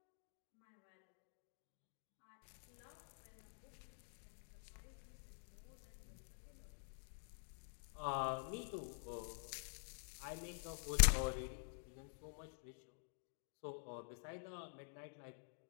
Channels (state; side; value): silent; right; digital silence